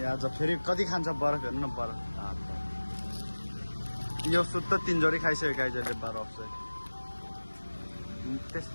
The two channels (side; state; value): both; inverted; correlation -1.00